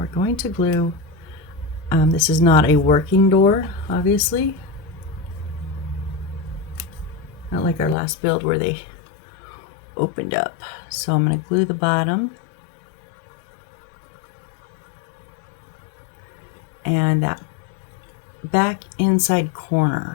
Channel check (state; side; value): drops out; right; at 8.0 s